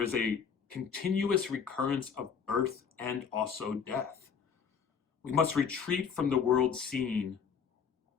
is a continuous recurrence of birth and also death. We must retreat from the world scene.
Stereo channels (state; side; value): quieter; right; 6.8 dB